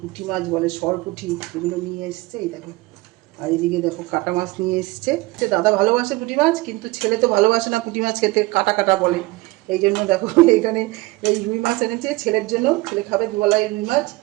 মাছ বলে সরপুঁটি, এগুলো নিয়ে এসছে। এই দেখো, আর এদিকে দেখো কাটা মাছ নিয়ে এসছে। দাদা ভালোবাসে পুঁটি মাছ, কিন্তু ছেলে তো ভালোবাসে না পুঁটি মাছ খেতে, কাটা কাটা বলে। এই জন্য দেখো এখানে এই রুই মাছ এনেছে ছেলের জন্য, ছেলে খাবে দুবেলায় রুই মাছ,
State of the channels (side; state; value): left; quieter; 21.3 dB